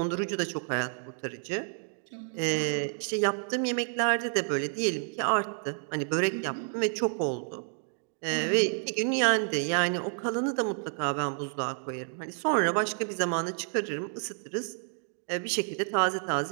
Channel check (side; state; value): left; silent; 58 dB below the other